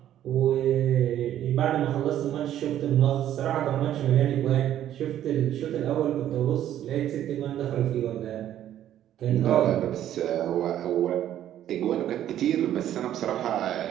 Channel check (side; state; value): left; quieter; 11.6 dB